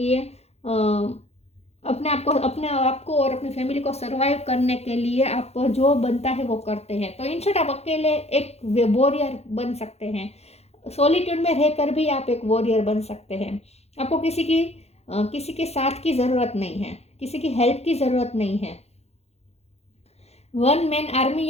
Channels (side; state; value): right; late; 0.31 ms